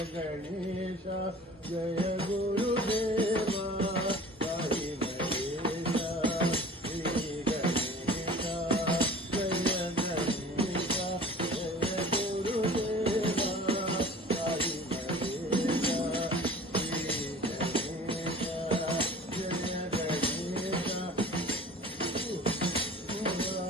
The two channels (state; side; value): normal; both; correlation 0.44